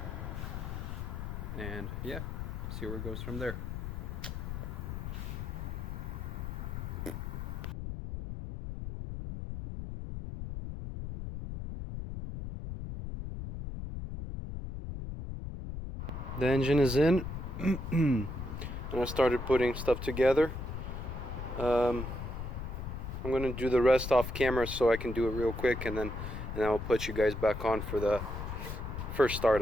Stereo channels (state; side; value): noise; left; rumble, 6 dB below the sound